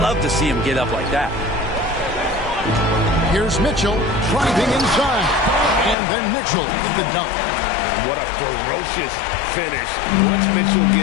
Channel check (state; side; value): drops out; right; at 6.0 s